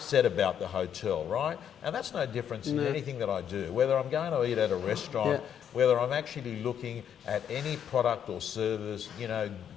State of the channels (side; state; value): right; quieter; 8.9 dB